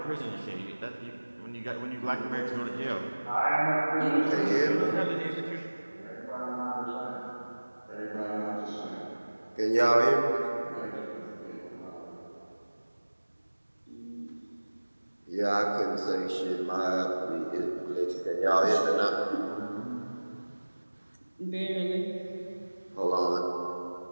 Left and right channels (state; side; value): inverted; both; correlation -1.00